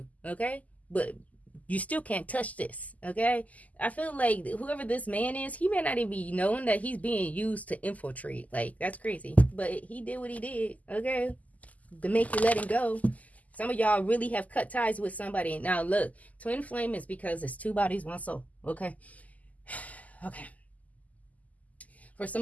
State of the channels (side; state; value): right; late; 0.076 ms